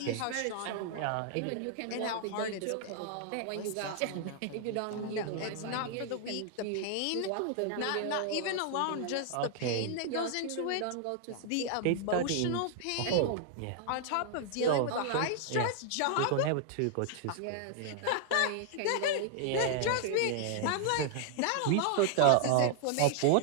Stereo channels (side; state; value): both; different; correlation 0.00